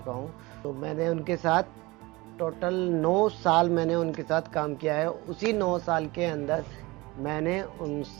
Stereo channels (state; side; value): quieter; left; 22.4 dB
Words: हूँ। तो मैंने उनके साथ टोटल 9 साल मैंने उनके साथ काम किया है। उसी 9 साल के अंदर मैंने